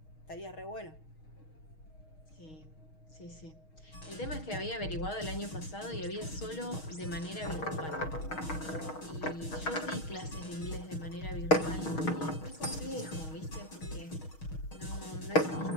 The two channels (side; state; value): right; late; 6.4 ms